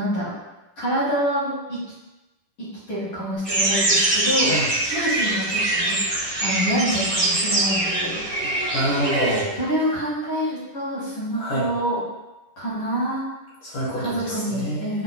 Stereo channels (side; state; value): right; late; 10 ms